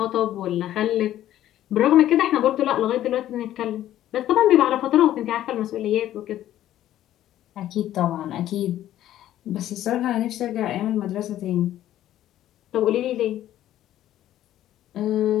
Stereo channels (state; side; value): quieter; right; 12.7 dB